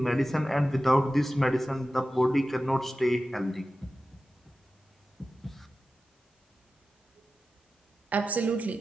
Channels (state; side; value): normal; both; correlation 0.94